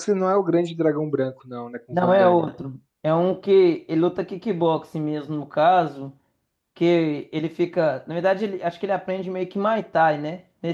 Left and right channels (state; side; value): identical; both; correlation 1.00